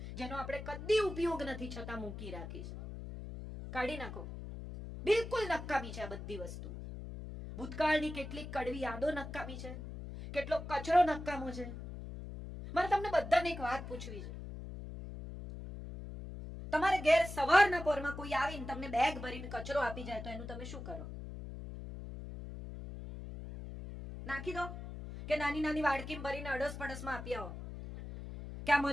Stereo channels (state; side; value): noise; left; hum, 9 dB below the sound